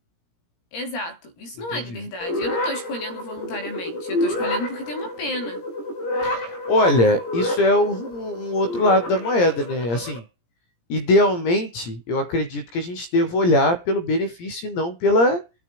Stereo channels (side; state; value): right; late; 17 ms